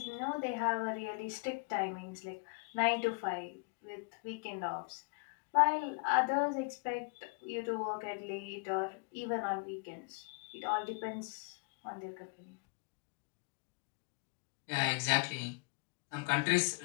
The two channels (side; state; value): right; quieter; 33.5 dB